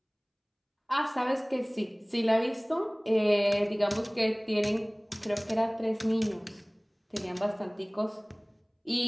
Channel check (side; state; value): both; identical; correlation 1.00